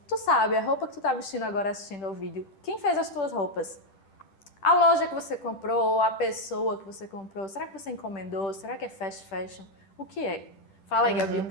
Tu sabe, a roupa que tu tá vestindo agora assistindo ao vídeo. Quem fez as tuas roupas? A loja que você comprou, a pessoa que você comprou, será que você encomendou? Será que é fast fashion? O que é? Fala aí, Gabi, um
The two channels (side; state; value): right; late; 10 ms